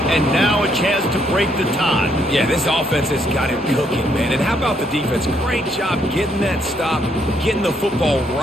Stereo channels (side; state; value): both; normal; correlation 0.72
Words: And now a chance to break the tie. Yeah, this offense has got it cooking, man. And how about the defense? Great job getting that stop, getting the football